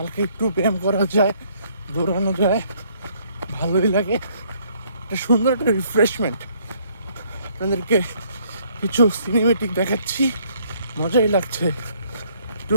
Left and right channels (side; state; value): both; inverted; correlation -0.65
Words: একটু ব্যায়াম করা যায়, দৌড়ানো যায়, ভালোই লাগে। একটা সুন্দর একটা রিফ্রেশমেন্ট। আপনাদেরকে কিছু সিনেমেটিক দেখাচ্ছি, মজাই লাগছে। একটু